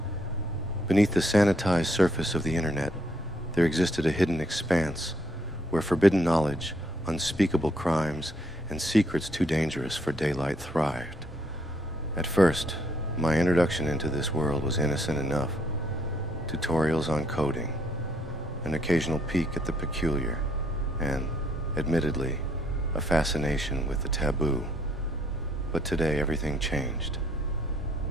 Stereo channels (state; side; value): normal; both; correlation 0.69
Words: Beneath the sanitized surface of the internet, there existed a hidden expanse where forbidden knowledge, unspeakable crimes, and secrets too dangerous for daylight thrived. At first, my introduction into this world was innocent enough. Tutorials on coding, an occasional peek at the peculiar, and, admittedly, a fascination with the taboo. But today, everything changed.